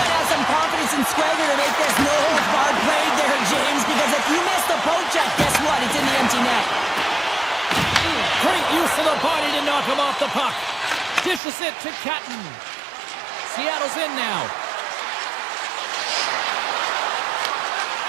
to have some confidence and swagger to make this no-holds-barred play there, James, because if you miss the poke check, guess what? It's in the empty net. Great use of the body to knock him off the puck. Dishes it to Catton. Seattle's in now.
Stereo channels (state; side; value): drops out; left; at 11.4 s